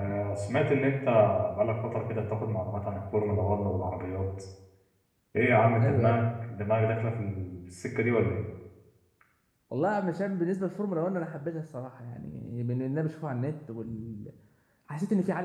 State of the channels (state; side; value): identical; both; correlation 1.00